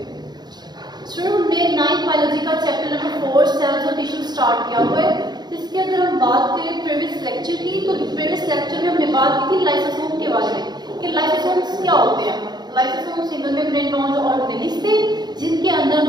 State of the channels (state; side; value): late; left; 0.20 ms